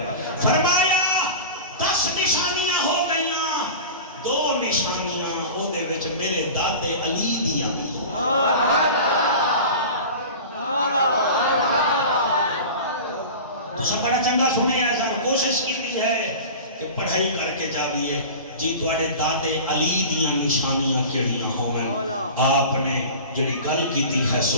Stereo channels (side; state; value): both; inverted; correlation -0.34